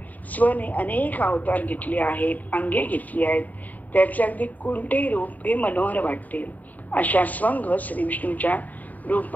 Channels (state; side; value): late; right; 0.078 ms